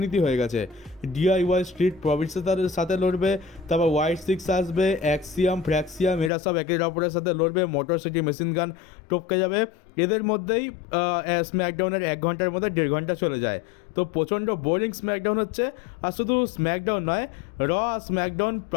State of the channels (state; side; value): drops out; right; at 6.3 s